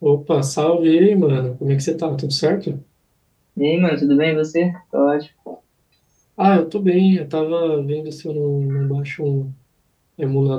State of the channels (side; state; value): both; identical; correlation 1.00